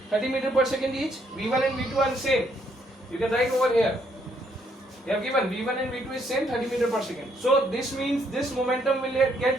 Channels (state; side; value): normal; both; correlation 0.71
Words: 30 meters per second each. V1 and V2 are same. You can write over here. They have given V1 and V2 is same, 30 meters per second. So this means this momentum will